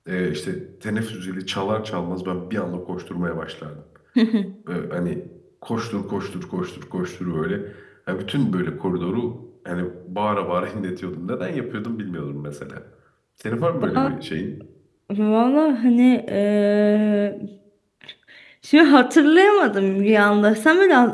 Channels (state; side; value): identical; both; correlation 1.00